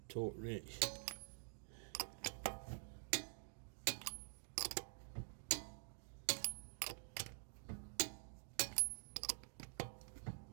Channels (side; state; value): left; silent; digital silence